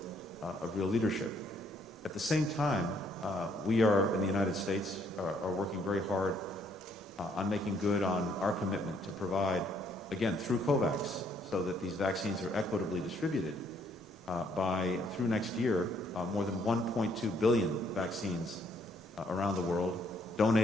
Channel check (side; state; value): both; normal; correlation 0.68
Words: leadership. At the same time, we are in the United States are working very hard on making good on our commitment to provide, again, through COVAX, so that these vaccines are equitably distributed through next year, more than 1.2 billion vaccines around the world,